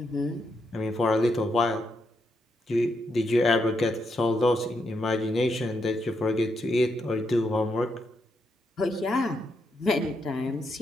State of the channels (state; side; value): normal; both; correlation 0.80